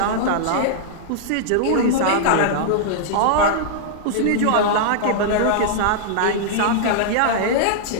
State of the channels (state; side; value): different; both; correlation -0.01